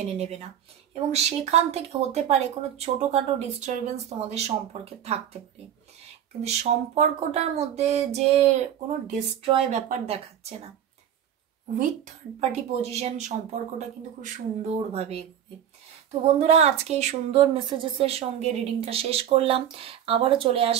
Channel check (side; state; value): left; quieter; 9.9 dB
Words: নেবে না এবং সেখান থেকে হতে পারে কোনো ছোটোখাটো ডিস্টারবেন্স তোমাদের সম্পর্কে থাকতে পারে, কিন্তু সম্পর্কটার মধ্যে যে কোনো ডিস্ট্রয় ব্যাপার দেখাচ্ছে না, উইথ থার্ড পার্টি পজিশন সম্পর্কটা কিন্তু খুব সুন্দরভাবে এগোবে। তো বন্ধুরা, আজকে এই সুন্দর মেসেজেসের সঙ্গে রিডিংটা শেষ করলাম, আবারও চলে